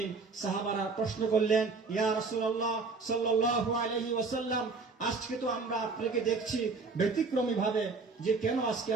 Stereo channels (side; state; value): left; quieter; 4.3 dB